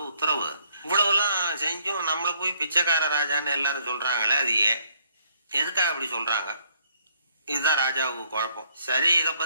உத்தரவு. இவ்வளவுலாம் செஞ்சும் நம்மளை போய் பிச்சைக்கார ராஜான்னு எல்லாரும் சொல்றாங்களே, அது ஏன், எதுக்காக அப்படி சொல்றாங்க? இதுதான் ராஜாவுக்கு குழப்பம். சரி, இதை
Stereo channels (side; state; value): both; inverted; correlation -0.67